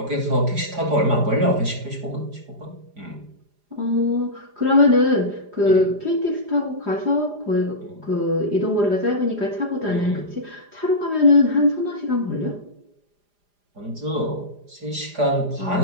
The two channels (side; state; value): left; late; 4.9 ms